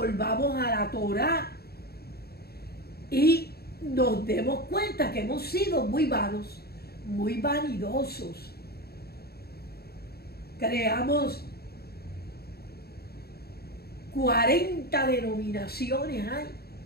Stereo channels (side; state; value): right; late; 0.46 ms